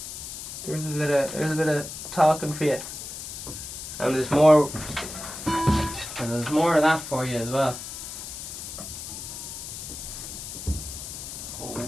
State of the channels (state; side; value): noise; left; hiss, 9 dB below the sound